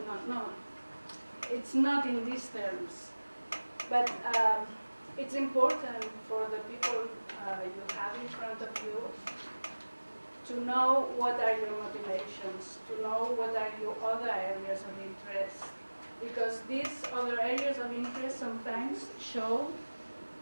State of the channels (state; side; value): inverted; both; correlation -1.00